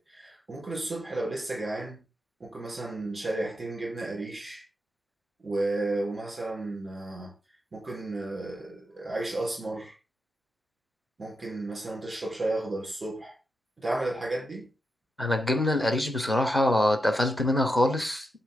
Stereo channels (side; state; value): both; normal; correlation 0.86